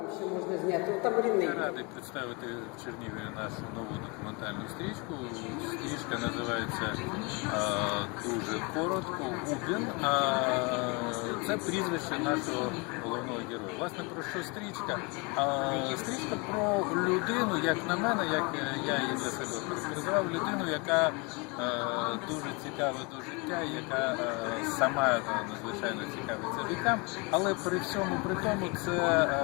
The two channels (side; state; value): right; quieter; 29.7 dB